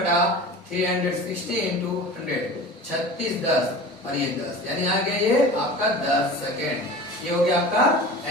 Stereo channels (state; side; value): normal; both; correlation 0.36